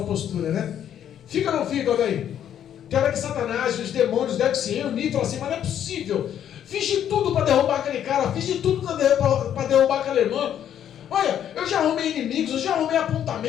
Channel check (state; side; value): quieter; right; 9.9 dB